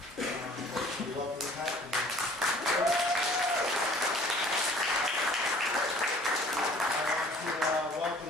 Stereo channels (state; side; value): normal; both; correlation 0.52